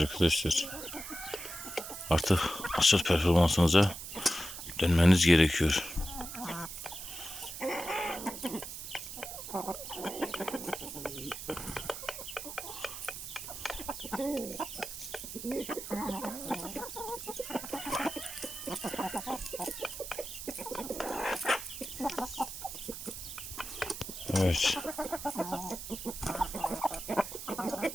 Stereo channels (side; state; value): right; noise; hiss, 9 dB below the sound